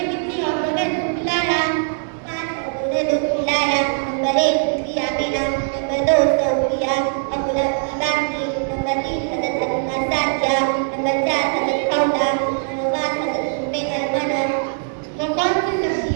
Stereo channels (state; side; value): silent; left; digital silence